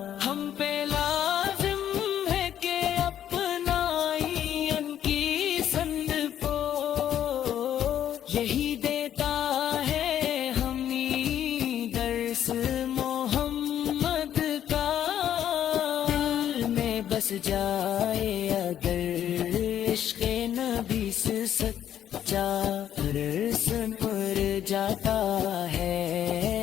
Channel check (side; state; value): right; quieter; 10.4 dB